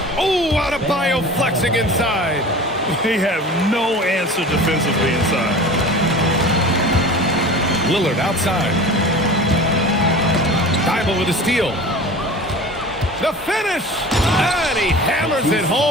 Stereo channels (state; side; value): normal; both; correlation 0.38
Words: Oh, Adebayo flexing inside. They have no answer defensively inside. Lillard outside. Thibault with a steal. The finish! And he hammers it